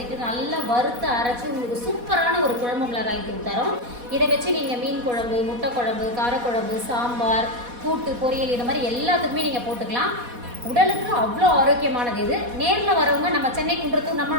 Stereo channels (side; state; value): left; late; 4.1 ms